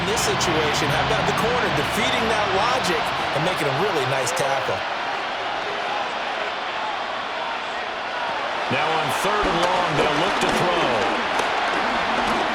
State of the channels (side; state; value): both; identical; correlation 1.00